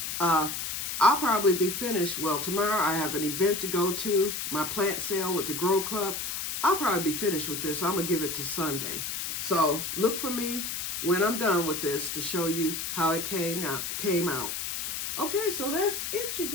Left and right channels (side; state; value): left; noise; hiss, 3 dB below the sound